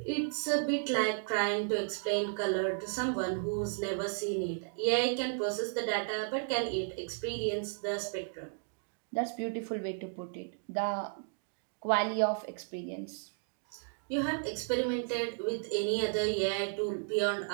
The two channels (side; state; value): left; silent; digital silence